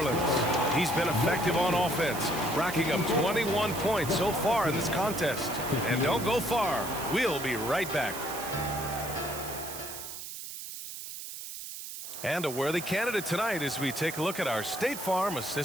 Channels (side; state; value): right; noise; hiss, 9 dB below the sound